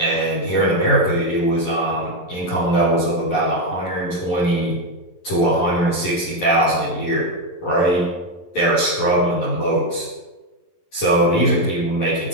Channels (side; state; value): right; late; 11 ms